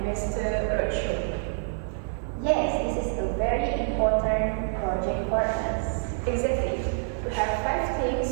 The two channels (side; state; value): left; silent; digital silence